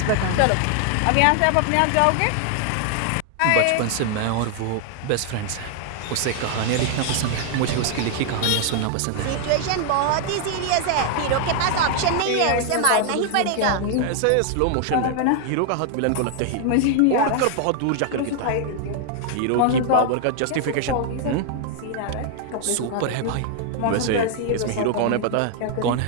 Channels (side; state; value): both; different; correlation 0.00